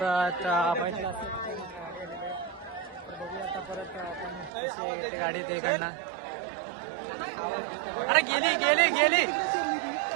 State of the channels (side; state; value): left; drops out; at 4.5 s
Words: परत गाडी ते इकडनं. अरे गेली